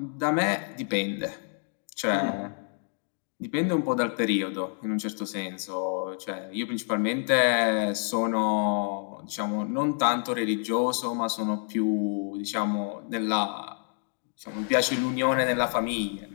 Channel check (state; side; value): silent; right; 58 dB below the other